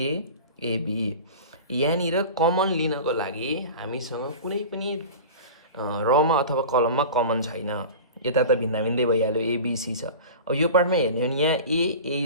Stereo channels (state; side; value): inverted; both; correlation -0.35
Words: AB. यहाँनिर कमन लिनको लागि हामीसँग कुनै पनि रमा अथवा कलममा कमन छैन, यता त भिन्दा भिन्दै भइहाल्यो एबिसी छ। अब यो पार्टमा हेर्ने हो भने यहाँ